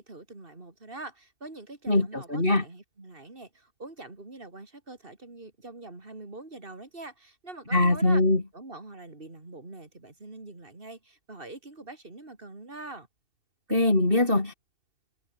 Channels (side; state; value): left; late; 2.7 ms